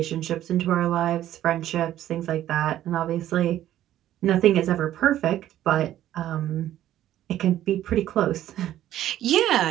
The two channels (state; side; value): quieter; left; 12.7 dB